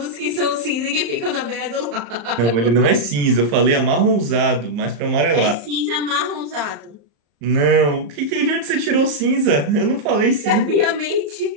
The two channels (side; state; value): left; late; 35 ms